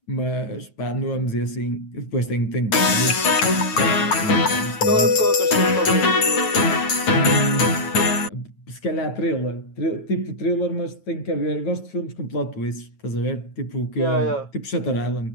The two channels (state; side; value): late; right; 9.1 ms